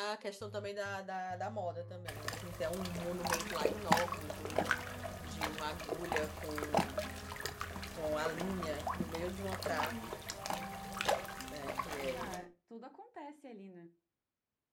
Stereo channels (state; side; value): identical; both; correlation 1.00